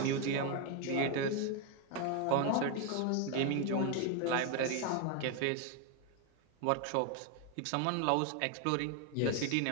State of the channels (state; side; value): different; both; correlation 0.01